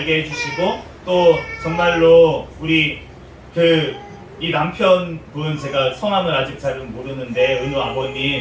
해주시고 또 정말로 우리 이 남편분 제가 성함을 아직 잘은 모르는데 은우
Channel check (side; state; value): both; identical; correlation 1.00